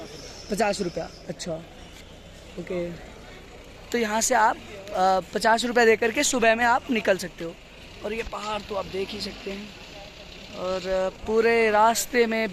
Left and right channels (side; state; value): both; identical; correlation 1.00